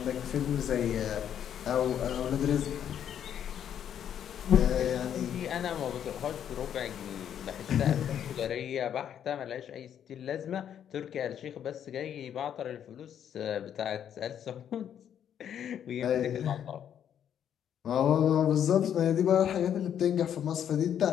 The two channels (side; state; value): right; quieter; 9.4 dB